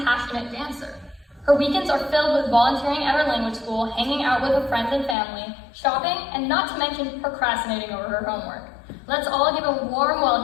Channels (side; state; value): right; drops out; at 5.2 s